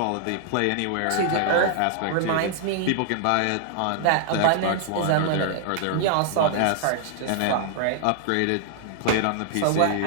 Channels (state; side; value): different; both; correlation -0.01